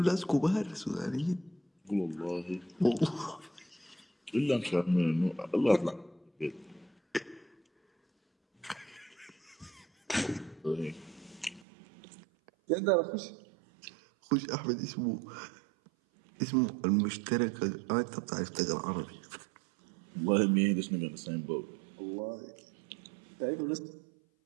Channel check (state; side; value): drops out; left; at 11.7 s